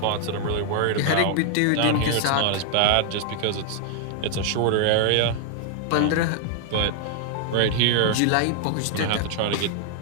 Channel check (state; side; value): different; both; correlation 0.00